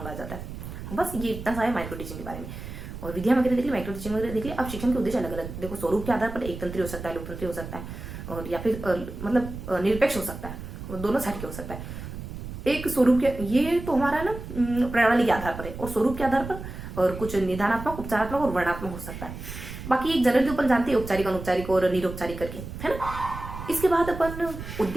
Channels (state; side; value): noise; right; rumble, 10 dB below the sound